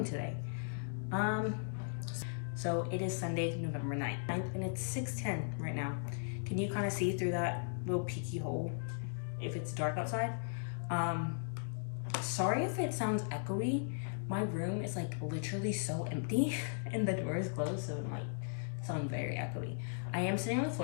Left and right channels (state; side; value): silent; right; digital silence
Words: today. So it is Sunday, November 9th, and it's 6:10 right now. Can you kind of see through that little peeky hole if it's dark outside? Sorry if it sounds echoey. My room is like literally so empty and the door is closed, so it might sound very echoey. I am sitting on the